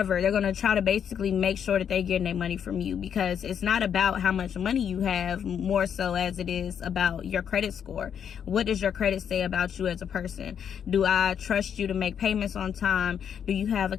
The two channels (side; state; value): right; quieter; 8.2 dB